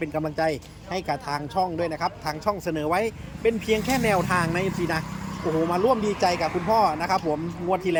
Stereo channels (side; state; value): both; identical; correlation 1.00